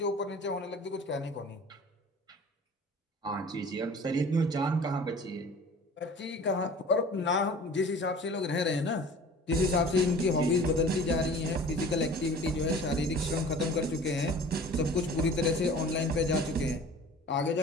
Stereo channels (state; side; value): normal; both; correlation 0.44